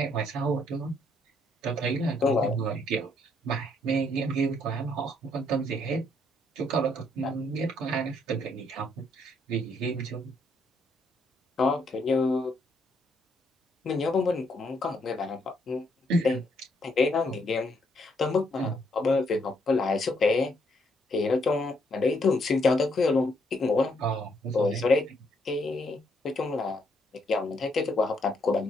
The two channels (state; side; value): normal; both; correlation 0.72